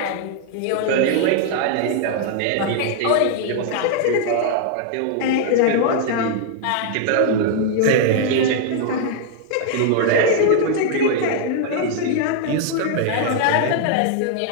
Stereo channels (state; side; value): different; both; correlation -0.01